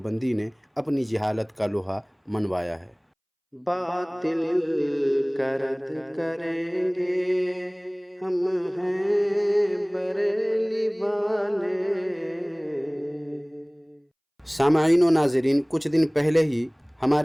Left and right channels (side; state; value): both; identical; correlation 1.00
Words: نے اپنی جہالت کا لوہا منوایا ہے۔ باطل کا رد کریں گے ہم ہیں بریلی والے۔ سامعین و ناظرین، کچھ دن پہلے ہی